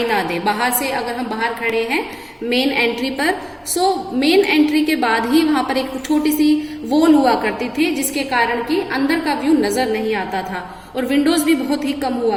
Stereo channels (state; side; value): identical; both; correlation 1.00